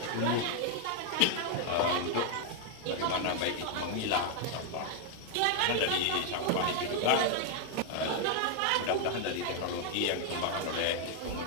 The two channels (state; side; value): different; both; correlation 0.00